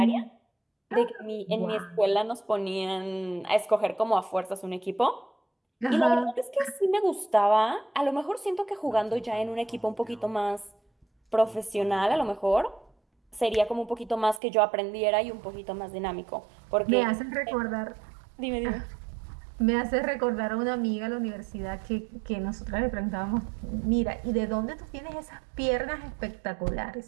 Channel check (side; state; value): left; drops out; at 14.4 s